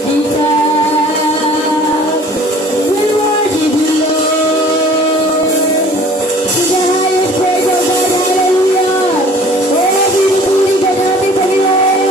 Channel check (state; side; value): normal; both; correlation 0.50